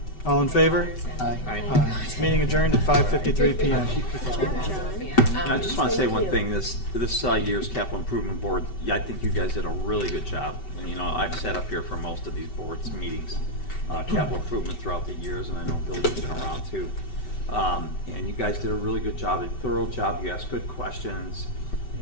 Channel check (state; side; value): late; right; 5.2 ms